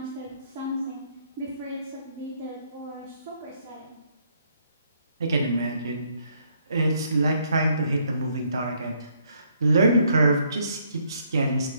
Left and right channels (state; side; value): inverted; both; correlation -0.69